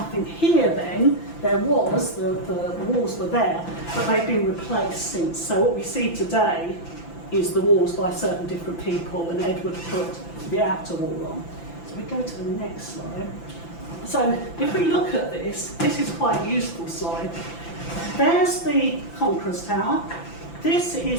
here then. There was, the walls were there, but they've been replaced since. So what we see today is the walls by certain different people, and Edward put the outer wall on. So we go to the next slide. So if we look at this is quite a useful slide. There's the Conqueror's Tower. This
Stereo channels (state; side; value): late; right; 5.9 ms